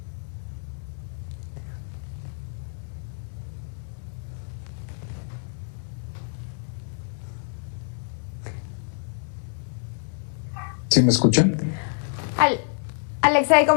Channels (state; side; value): silent; right; digital silence